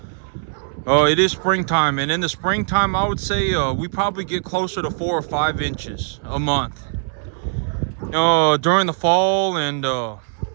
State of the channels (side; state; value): left; silent; 65 dB below the other